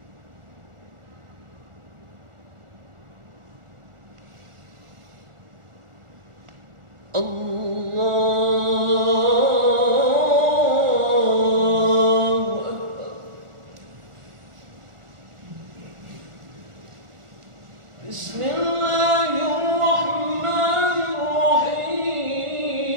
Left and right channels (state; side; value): late; left; 1.4 ms